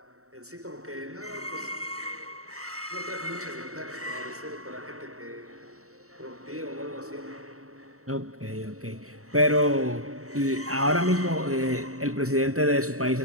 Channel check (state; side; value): late; left; 0.64 ms